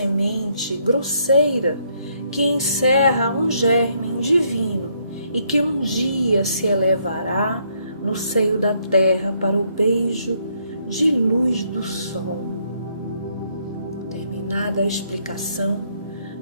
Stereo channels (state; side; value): inverted; both; correlation -0.71